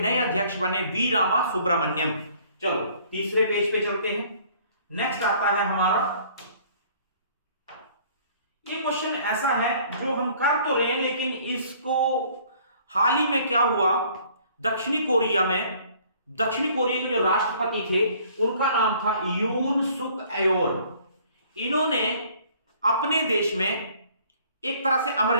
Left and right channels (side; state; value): both; inverted; correlation -0.57